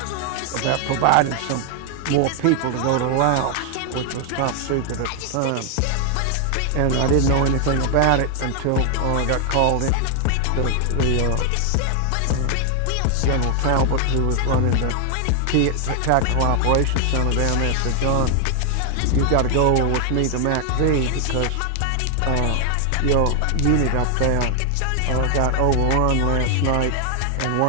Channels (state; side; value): different; both; correlation 0.00